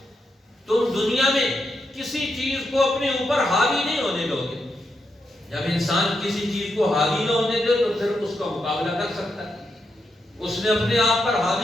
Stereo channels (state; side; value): normal; both; correlation 0.83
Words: تم دنیا میں کسی چیز کو اپنے اوپر حاوی نہیں ہونے دو گے. جب انسان کسی چیز کو حاوی نہ ہونے دے تو پھر اس کا مقابلہ کر سکتا ہے. اس نے اپنے آپ پر